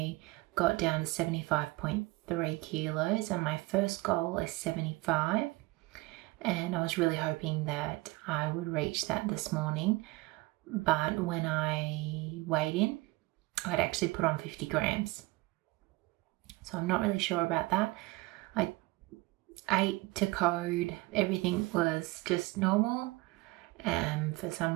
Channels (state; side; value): quieter; left; 22.6 dB